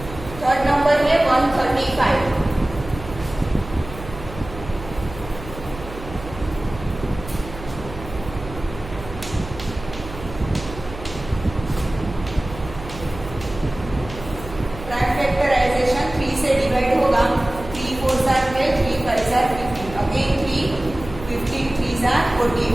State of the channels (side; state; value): right; noise; hum, 13 dB below the sound